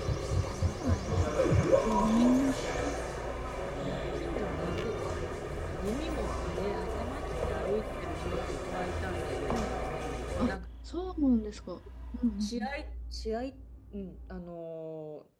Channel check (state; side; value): identical; both; correlation 1.00